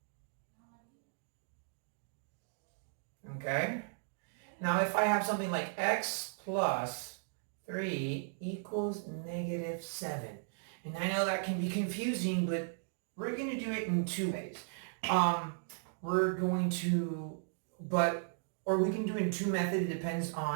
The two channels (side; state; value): left; silent; digital silence